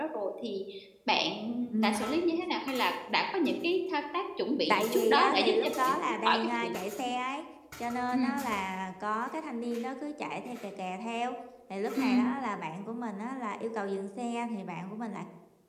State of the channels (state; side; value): identical; both; correlation 1.00